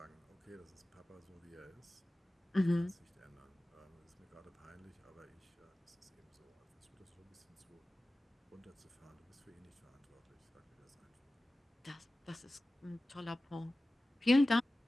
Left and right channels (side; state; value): both; normal; correlation 0.96